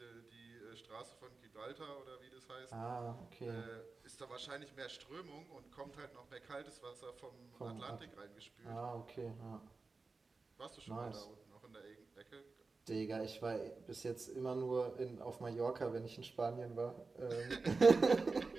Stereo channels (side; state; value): left; quieter; 4.0 dB